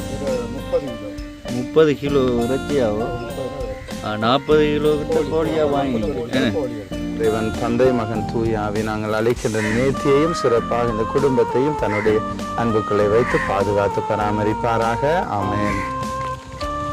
30 கிலோ இறைச்சியாகும். 40 கிலோ கிட்ட கோழியாக வாங்கினீங்க. இறைவன் தந்தை மகன் தூயாவி நாங்கள் அழைக்கின்ற நேர்த்தியையும் சிறப்பாக இந்த குடும்பத்தையும் தன்னுடைய அன்புக்களை வைத்து பாதுகாத்து பராமரிப்பாராக. ஆமென்.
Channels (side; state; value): both; identical; correlation 1.00